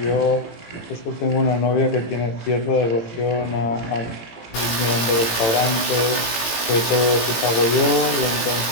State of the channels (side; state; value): right; late; 18 ms